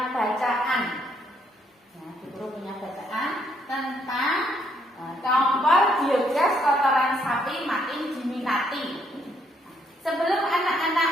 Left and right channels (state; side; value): normal; both; correlation 0.71